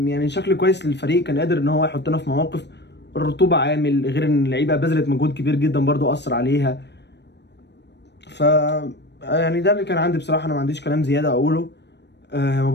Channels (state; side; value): late; right; 0.50 ms